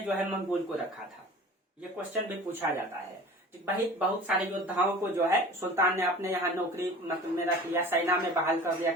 जो है मंगोल को रखा था, ये क्वेश्चन भी पूछा जाता है। बहुत सारे योद्धाओं को जो है सुल्तान ने अपने यहाँ नौकरी मतलब में रख लिया, सेना में बहाल कर दिया,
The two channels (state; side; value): normal; both; correlation 0.41